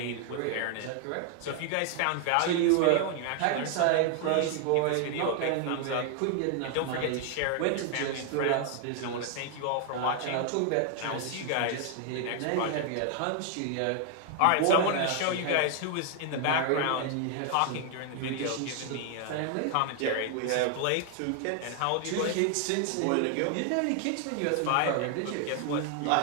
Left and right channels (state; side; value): different; both; correlation 0.00